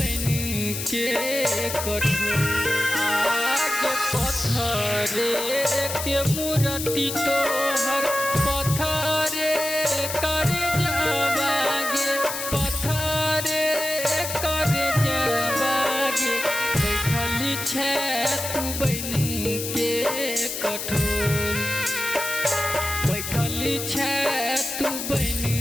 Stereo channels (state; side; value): noise; left; hiss, 5 dB below the sound